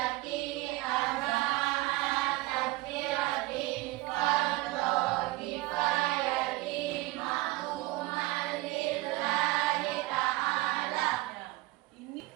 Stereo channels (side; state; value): left; quieter; 19.8 dB